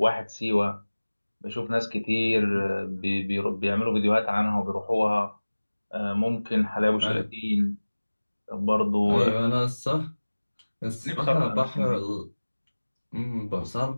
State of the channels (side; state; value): both; inverted; correlation -1.00